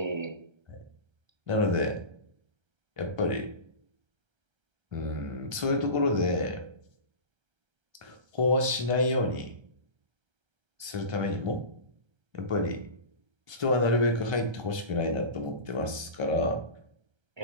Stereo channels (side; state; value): left; late; 1.3 ms